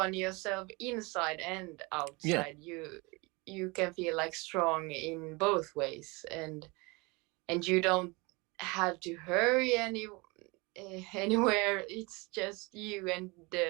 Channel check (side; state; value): left; quieter; 26.6 dB